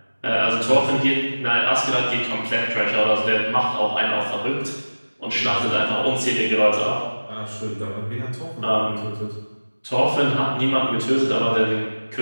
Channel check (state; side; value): inverted; both; correlation -1.00